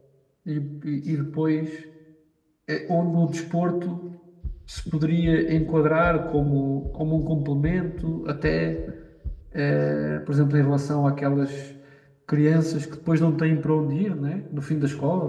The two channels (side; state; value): both; identical; correlation 1.00